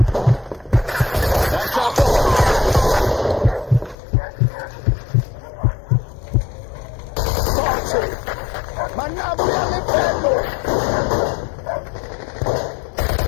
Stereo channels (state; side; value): drops out; right; at 4.0 s